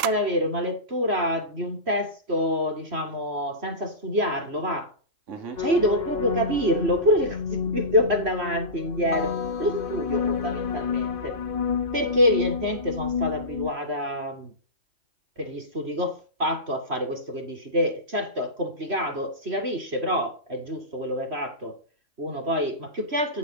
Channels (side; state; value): left; late; 3.1 ms